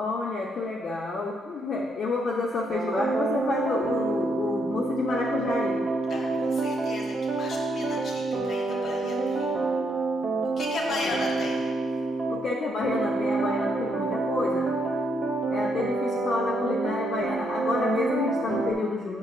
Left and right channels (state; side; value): normal; both; correlation 0.75